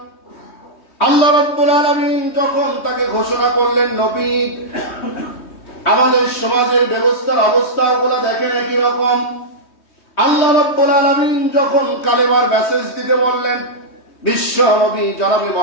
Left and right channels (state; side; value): late; right; 3.2 ms